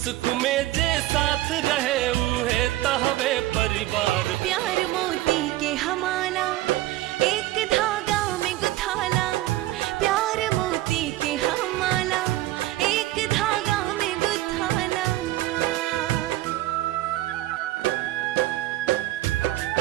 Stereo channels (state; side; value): quieter; left; 16.3 dB